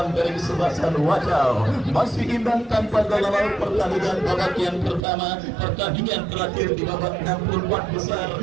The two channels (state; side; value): drops out; left; at 5.0 s